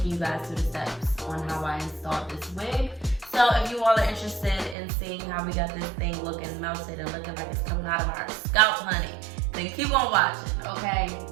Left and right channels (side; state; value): left; drops out; at 4.8 s